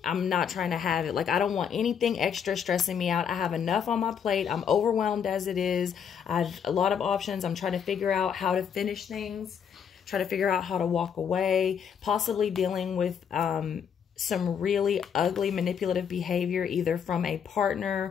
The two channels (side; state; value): right; quieter; 7.6 dB